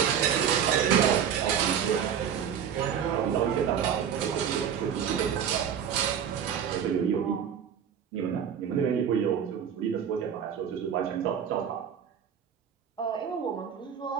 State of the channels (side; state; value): left; quieter; 8.3 dB